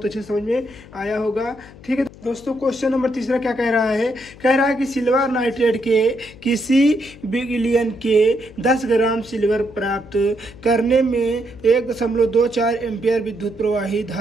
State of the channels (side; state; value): left; noise; hum, 20 dB below the sound